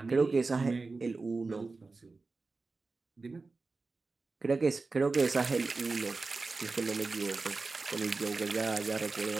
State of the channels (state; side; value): quieter; left; 3.8 dB